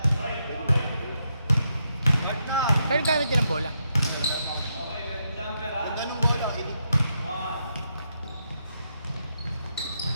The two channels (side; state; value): both; inverted; correlation -0.81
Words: Saan gamit din ang bola? Ganun bola, ini.